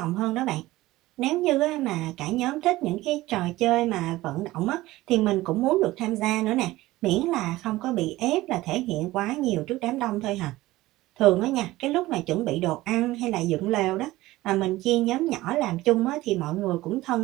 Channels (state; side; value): quieter; left; 17.7 dB